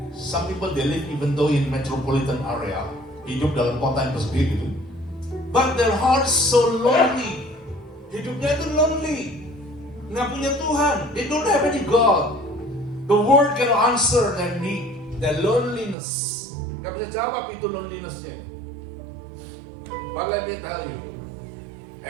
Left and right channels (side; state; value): left; drops out; at 16.0 s